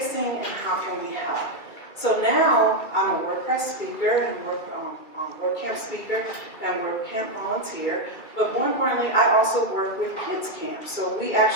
and how can we help? So now I'm a WordPress speaker and WordCamp speaker and WordCamp volunteer. But more importantly, I also work with KidsCamps. So we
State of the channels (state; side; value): late; right; 2.5 ms